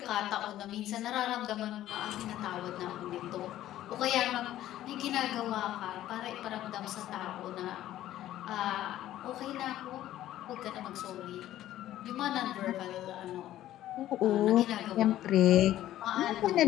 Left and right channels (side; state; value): right; quieter; 13.4 dB